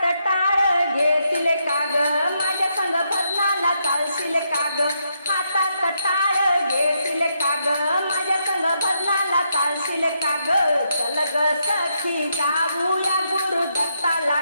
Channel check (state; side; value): inverted; both; correlation -0.79